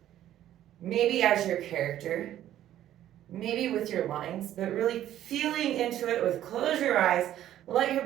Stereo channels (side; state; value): left; quieter; 12.3 dB